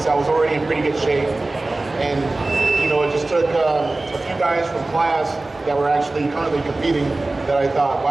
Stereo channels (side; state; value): left; quieter; 3.0 dB